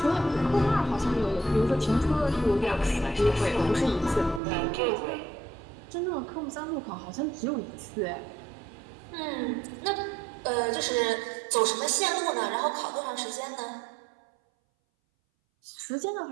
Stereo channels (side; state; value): left; drops out; at 4.4 s